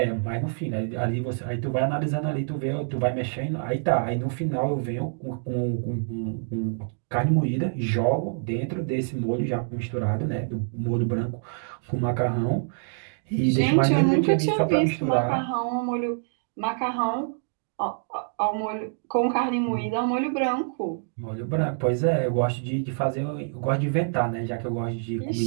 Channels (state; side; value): silent; left; digital silence